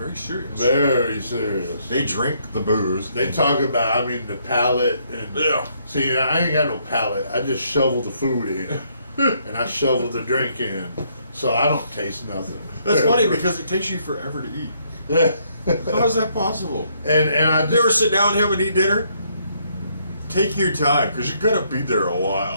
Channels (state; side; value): inverted; both; correlation -0.70